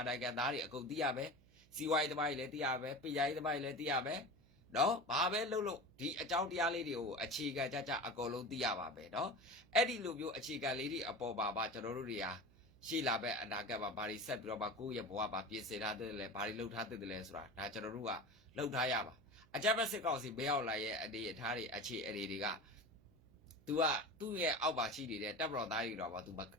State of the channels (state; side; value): noise; right; hum, 27 dB below the sound